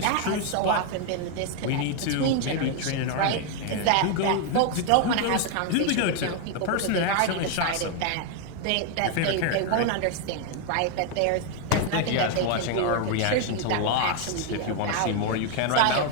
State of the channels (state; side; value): different; both; correlation 0.00